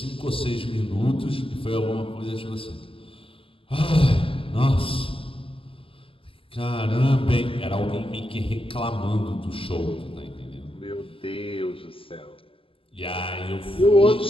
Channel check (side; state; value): right; late; 0.26 ms